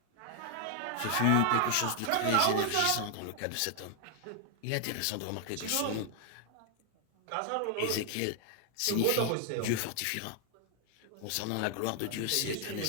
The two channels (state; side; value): different; both; correlation 0.00